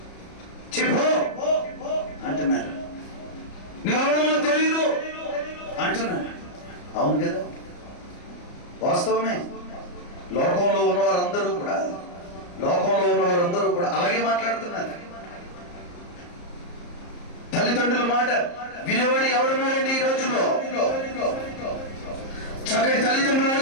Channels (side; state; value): right; late; 34 ms